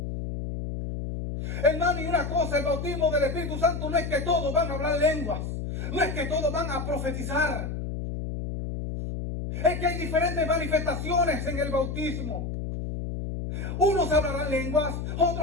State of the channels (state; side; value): noise; left; hum, 4 dB below the sound